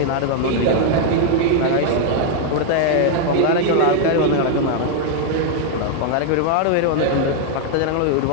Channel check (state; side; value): different; both; correlation 0.00